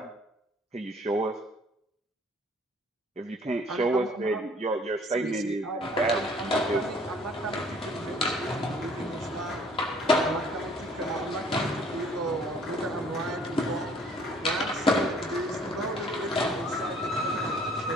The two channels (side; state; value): both; normal; correlation 0.57